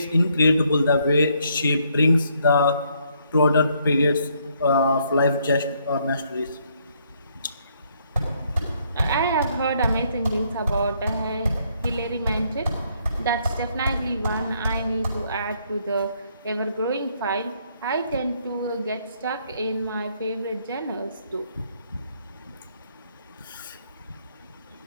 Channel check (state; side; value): inverted; both; correlation -0.70